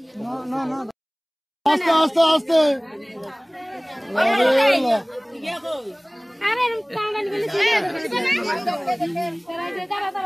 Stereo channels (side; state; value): both; identical; correlation 1.00